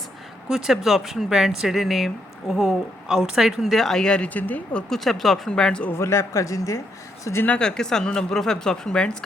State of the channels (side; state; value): both; normal; correlation 0.76